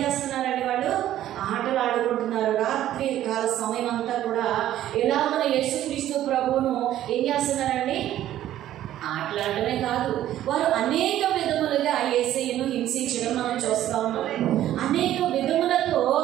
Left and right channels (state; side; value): quieter; left; 12.7 dB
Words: చేస్తున్నారండి? వాళ్ళు ఆటలాడుకుంటున్నారు. రాత్రి కాల సమయం అంతా కూడా ఎలా మన యేసుక్రీస్తు ప్రభువును ఏం చేస్తున్నారండి? ఆటలాడటమే కాదు, వారు అనేక విధములుగా యేసయ్యను హింసించడం మనం చూస్తూ ఉన్నాం. అనేక విధములతో